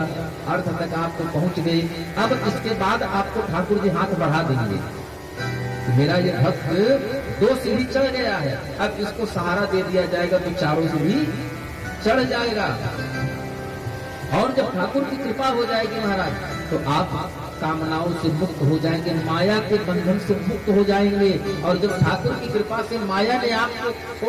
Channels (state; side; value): identical; both; correlation 1.00